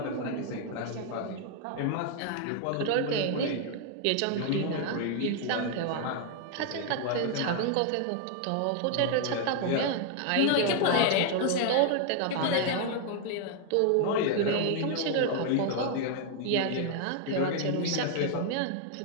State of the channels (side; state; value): both; different; correlation 0.00